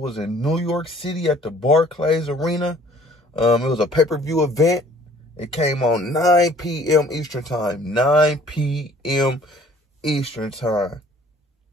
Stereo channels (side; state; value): both; normal; correlation 0.55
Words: in New York City at the Barclays Arena. It was a pay-per-view event. It came on 9 p.m. Eastern Time. 9 p.m. Eastern Time.